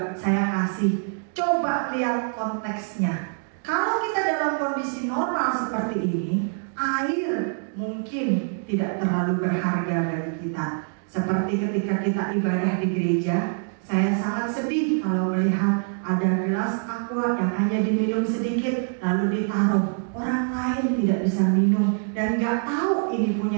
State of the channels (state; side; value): silent; left; 62 dB below the other